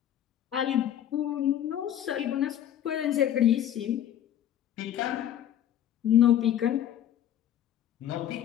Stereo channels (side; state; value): right; quieter; 10.8 dB